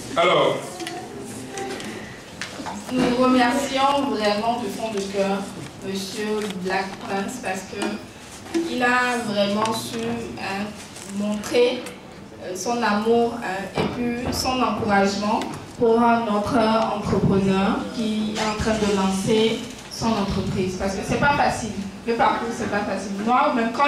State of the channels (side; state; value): both; identical; correlation 1.00